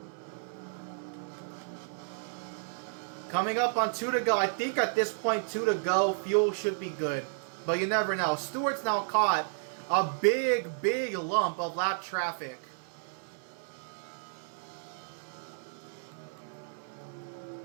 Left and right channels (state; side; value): silent; left; 56 dB below the other